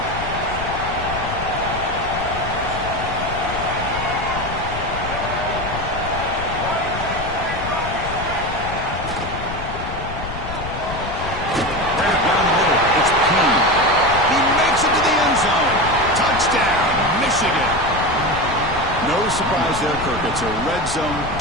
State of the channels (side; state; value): left; noise; rumble, 8 dB below the sound